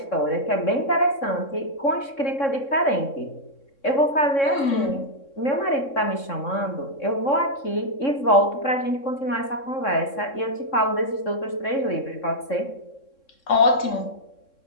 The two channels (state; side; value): late; right; 3.6 ms